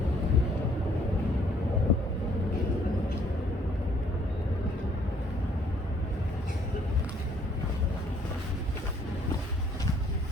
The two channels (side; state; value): both; normal; correlation 0.63